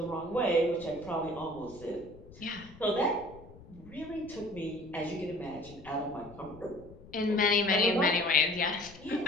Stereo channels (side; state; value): left; noise; rumble, 20 dB below the sound